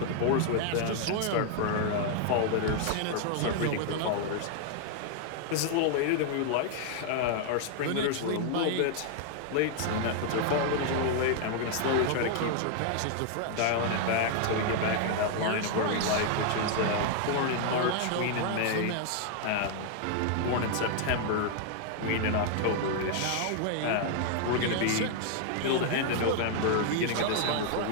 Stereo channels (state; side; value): different; both; correlation 0.00